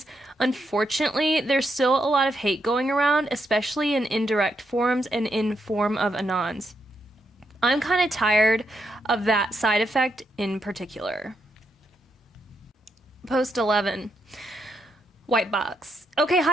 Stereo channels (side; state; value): both; normal; correlation 0.80